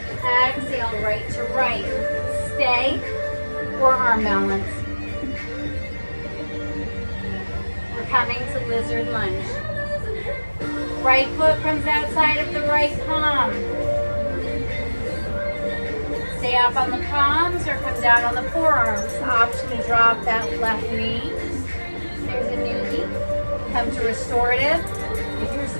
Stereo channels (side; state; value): both; inverted; correlation -1.00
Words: Exhale, right to right. Stay or arm balance. We're coming to lizard lunge. Right foot comes outside of the right palm. Stay up on the palms or come down on the forearms. Option to drop that left knee. There's a newbie. Come to restorative. If you're